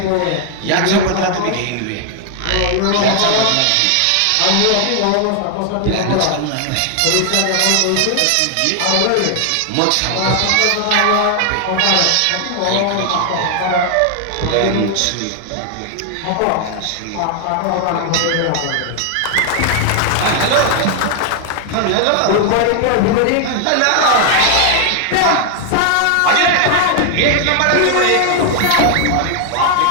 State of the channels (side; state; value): both; different; correlation 0.00